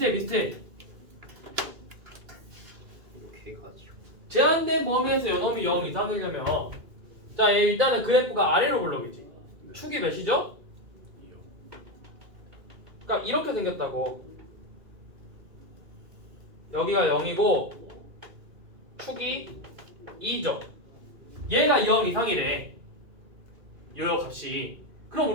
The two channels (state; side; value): late; left; 2.4 ms